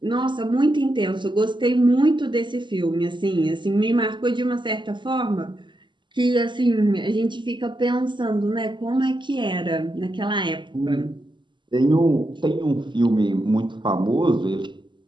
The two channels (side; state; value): left; late; 0.23 ms